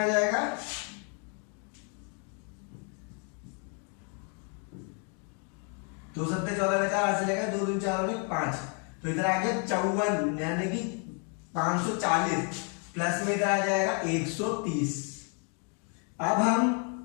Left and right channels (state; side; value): quieter; right; 39.7 dB